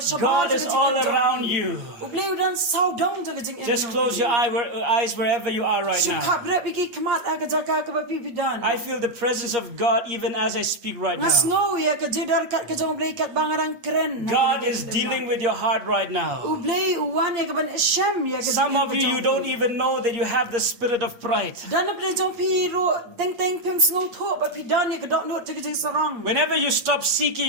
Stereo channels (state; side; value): late; left; 8.5 ms